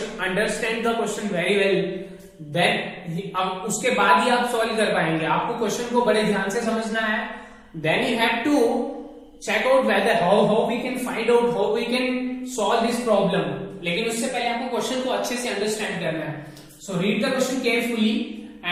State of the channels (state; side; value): identical; both; correlation 1.00